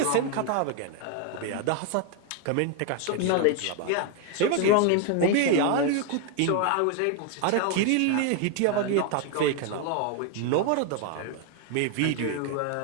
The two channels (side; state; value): both; different; correlation 0.01